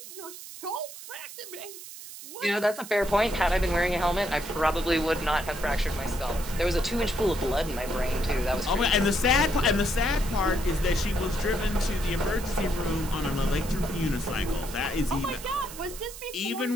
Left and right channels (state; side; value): noise; right; hiss, 13 dB below the sound